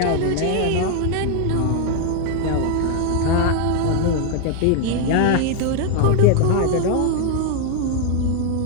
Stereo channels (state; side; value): different; both; correlation 0.00